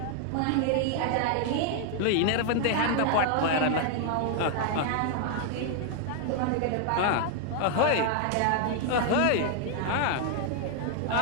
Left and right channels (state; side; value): different; both; correlation 0.00